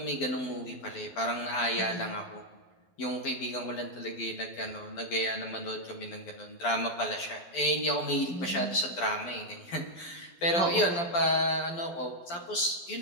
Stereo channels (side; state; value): right; late; 12 ms